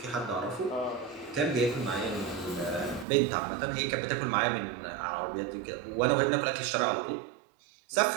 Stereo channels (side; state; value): left; drops out; at 3.1 s